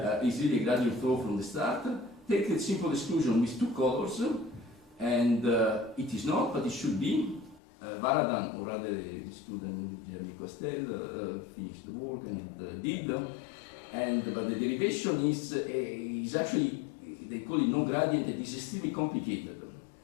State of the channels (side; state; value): right; drops out; at 7.6 s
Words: is really a gradient flow from the start. Take the simple exclusion with two colors, and it is not, but it should be. Varadan, or rather the student Jeremy Costel, finished the work and did, but the derivation is actually, they call it non-gradient, it is extremely complicated.